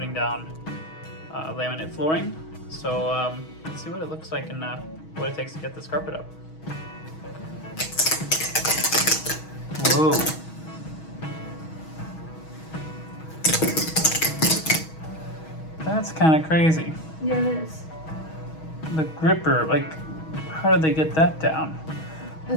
down laminate flooring. So let's see what it looks like and what it takes to get this carpet up. Whoa. That's kind of crazy. Yeah, it is. The gripper, like, how did they get that down? The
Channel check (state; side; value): late; right; 6.3 ms